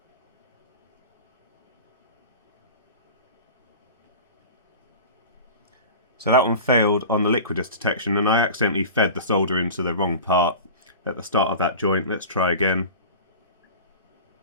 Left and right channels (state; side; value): inverted; both; correlation -0.35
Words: So that one failed on the liquidus detection, and I accidentally fed the solder into the wrong part at the start of that joint. Let's try again.